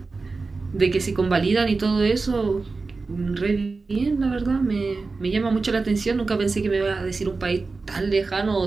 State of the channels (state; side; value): quieter; left; 4.0 dB